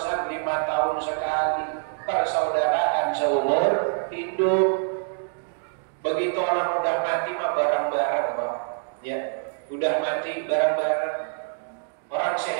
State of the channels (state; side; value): silent; left; 61 dB below the other